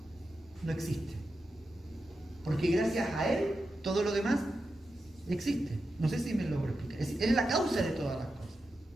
existe. Porque gracias a Él, todo lo demás existe. No sé si me logro explicar. Es la causa de todas las cosas.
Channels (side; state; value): both; normal; correlation 0.89